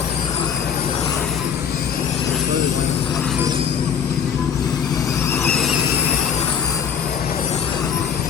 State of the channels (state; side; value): quieter; right; 7.5 dB